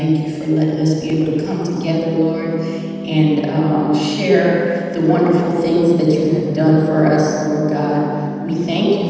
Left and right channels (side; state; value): both; identical; correlation 1.00